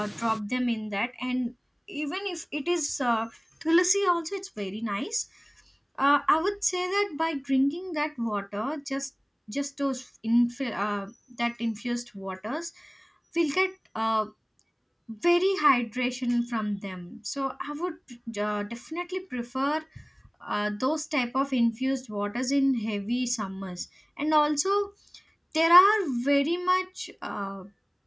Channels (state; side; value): identical; both; correlation 1.00